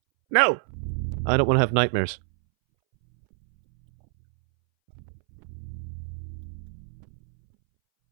No! I don't want to have nightmares.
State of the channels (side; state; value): left; silent; 61 dB below the other